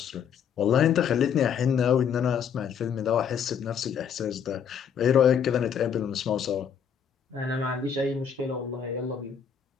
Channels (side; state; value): right; quieter; 7.7 dB